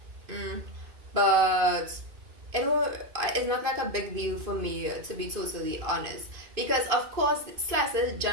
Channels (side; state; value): left; late; 2.5 ms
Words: but it's not like a big deal for me, to be totally honest, because of course